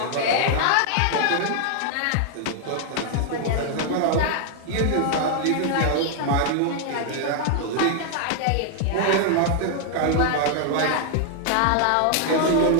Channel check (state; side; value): different; both; correlation 0.00